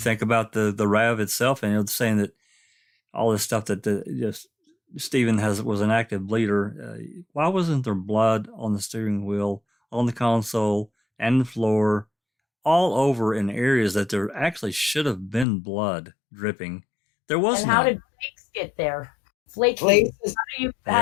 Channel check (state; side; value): drops out; right; at 15.5 s